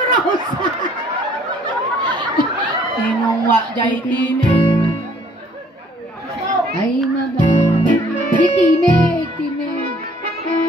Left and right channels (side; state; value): both; normal; correlation 0.59